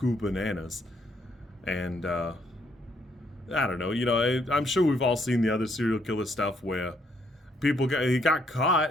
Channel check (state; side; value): normal; both; correlation 0.71